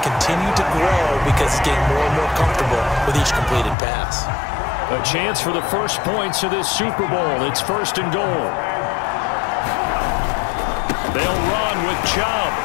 continue to grow because he's getting more and more comfortable with each completed pass. A chance for the first points of this Super Bowl. It's 1st and goal. They'll run with Chubb.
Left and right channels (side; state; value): right; drops out; at 3.8 s